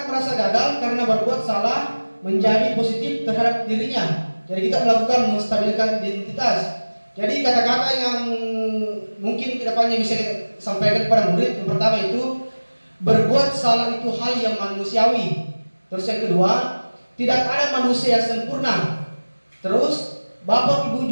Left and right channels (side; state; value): both; inverted; correlation -1.00